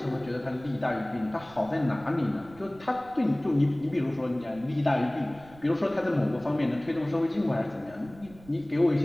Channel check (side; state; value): right; noise; rumble, 22 dB below the sound